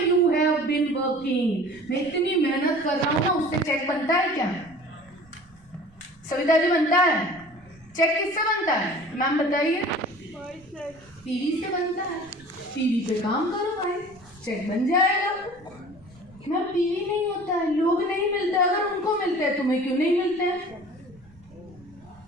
you have been working. मैं इतनी मेहनत कर रहा हूँ ना, उससे चेक बनता है क्या? सविता जी बनता है? चेक किससे बनता है मैम बताइए? पीवी से बनता है। पीवी पे काम करो भाई, चेक बन जाएगा। मैम पीवी नहीं होता है, लोग नहीं मिलते। अगर उनको मिलते हैं तुम्हें क्यों नहीं मिलते हैं?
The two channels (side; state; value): right; noise; rumble, 28 dB below the sound